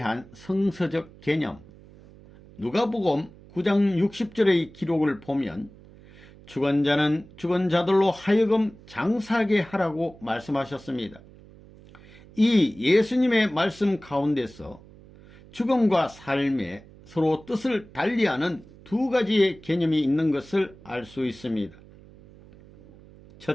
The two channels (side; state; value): right; noise; hum, 22 dB below the sound